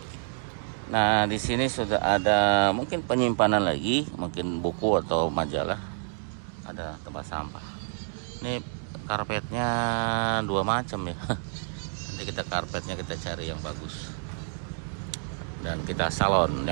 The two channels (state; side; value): silent; left; digital silence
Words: Nah, di sini sudah ada mungkin penyimpanan lagi, mungkin buku atau majalah. Ada tempat sampah. Ini karpetnya dua macam ya. Nanti kita karpetnya kita cari yang bagus. Dan kita salon